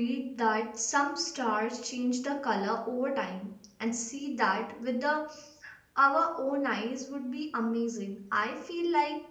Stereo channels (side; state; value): both; identical; correlation 1.00